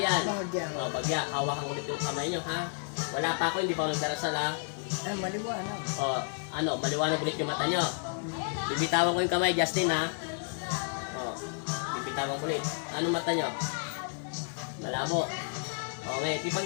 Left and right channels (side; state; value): right; silent; 57 dB below the other